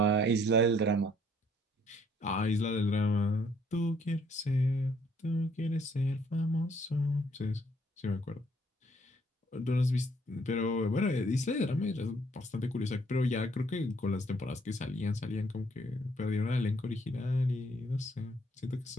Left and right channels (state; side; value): normal; both; correlation 0.65